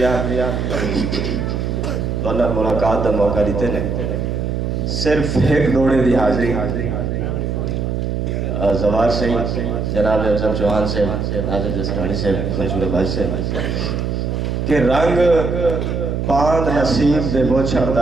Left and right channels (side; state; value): right; noise; hum, 1 dB below the sound